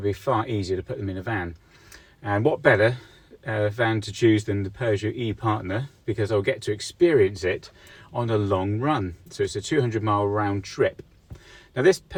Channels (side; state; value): both; identical; correlation 1.00